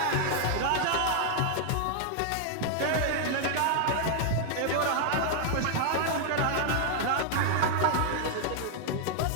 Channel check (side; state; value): both; different; correlation 0.00